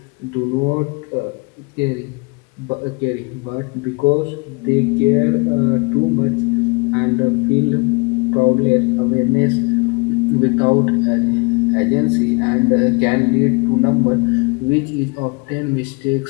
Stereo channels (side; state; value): right; quieter; 30.4 dB